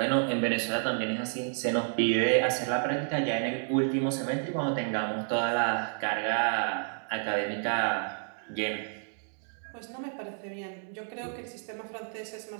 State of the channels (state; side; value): silent; left; digital silence